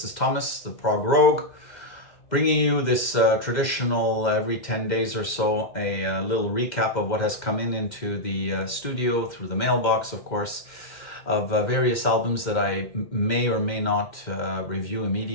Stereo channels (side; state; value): right; late; 2.1 ms